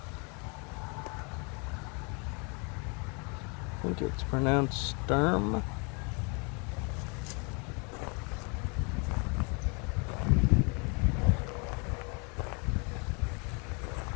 I think it's pronounced Sturm.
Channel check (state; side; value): quieter; right; 33.2 dB